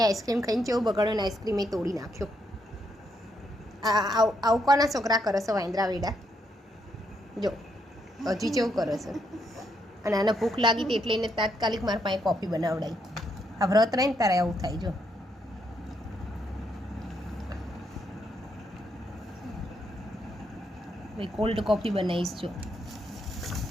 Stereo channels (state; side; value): normal; both; correlation 0.77